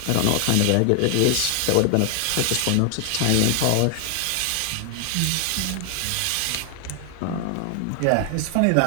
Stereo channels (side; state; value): both; different; correlation 0.00